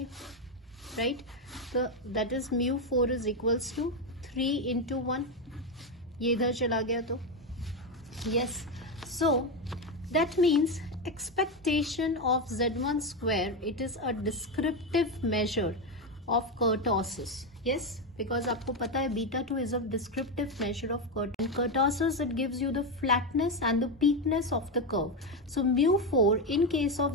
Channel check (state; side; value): normal; both; correlation 0.10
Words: राइट, तो that is mu 4 is equals to 3 into 1. ये इधर चला गया तो yes. So that means expectation of z1 square, it is a descriptive measure of kurtosis. Yes, because आपको पता है beta 2 is a descriptive measure of kurtosis. It gives you the flatness and the peakness of the curve. So mu 4 in case